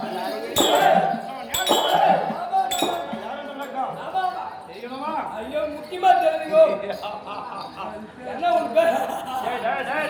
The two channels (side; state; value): both; identical; correlation 1.00